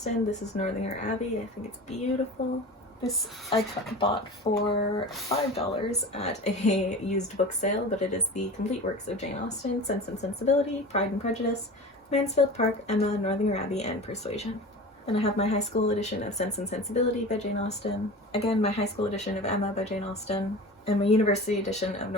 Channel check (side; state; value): both; normal; correlation 0.35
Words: This is Northanger Abbey. I think it's beautiful. This I bought for $5 at a used book sale, but it is the complete works of Jane Austen, Sense and Sensibility, Pride and Prejudice, Mansfield Park, Emma, Northanger Abbey, and Persuasion. Then I have my high school edition of Sense and Sensibility by Jane Austen, again my high school edition of Emma by Jane Austen, and my university edition of